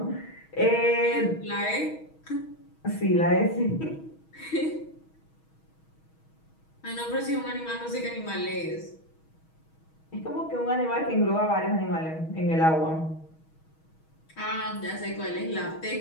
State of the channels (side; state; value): right; late; 6.3 ms